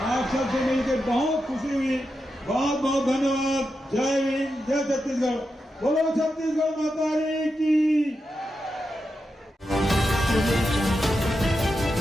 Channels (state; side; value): normal; both; correlation 0.88